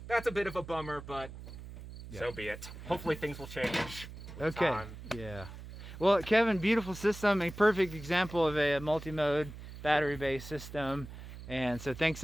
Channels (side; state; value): right; noise; hum, 13 dB below the sound